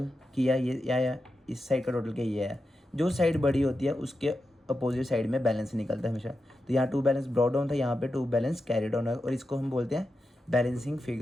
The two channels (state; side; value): normal; both; correlation 0.89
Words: किया ये, या इस साइड का टोटल किया ये है। जो साइड बड़ी होती है उसके अपोजिट साइड में बैलेंस निकलता है हमेशा। तो यहाँ 2 बैलेंस ब्रॉट डाउन था, यहाँ पे 2 बैलेंस कैरी डाउन है, और इसको हम बोलते हैं बैलेंसिंग